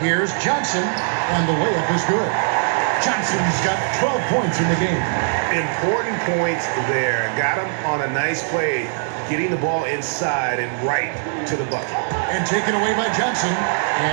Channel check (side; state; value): left; silent; digital silence